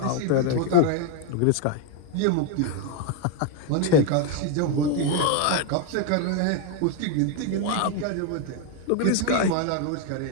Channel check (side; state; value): both; different; correlation 0.01